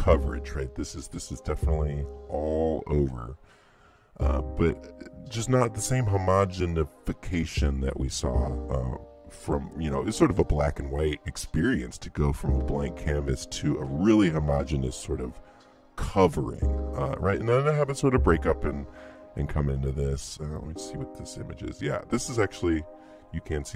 right? This is definitely all over, but just not the same homogenification that we saw from, it's sort of a black and white experience to go from a blank canvas to a really homogeneous sort of covering, right? And then I have it sort of break up and come into this. Let's see what this image is. Yeah, this is actually, you can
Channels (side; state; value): both; identical; correlation 1.00